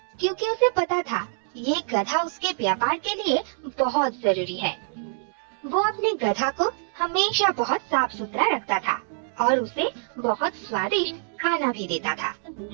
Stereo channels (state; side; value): silent; left; 61 dB below the other